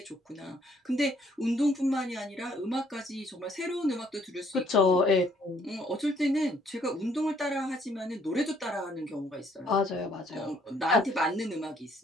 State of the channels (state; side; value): normal; both; correlation 0.65